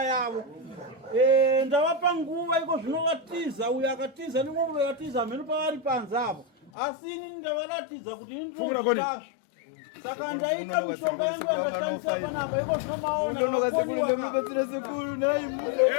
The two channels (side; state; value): right; drops out; at 6.7 s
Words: yavo. Ndavapa nguva iko zvino vatiza uyo akatiza nimwe vatiza mhenu pavari panze apo asi ini ndavaratidza kuti ini ndinozvazvo saka ndaita mishonga yangu yakashandisa panapa iko zvinomaona